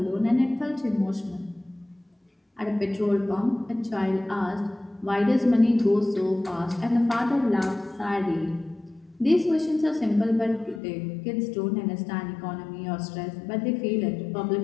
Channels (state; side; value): drops out; right; at 10.8 s